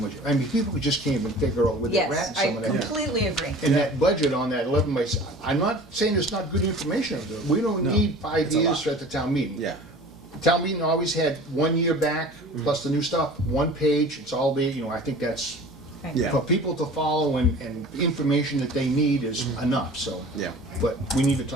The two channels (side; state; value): both; normal; correlation 0.42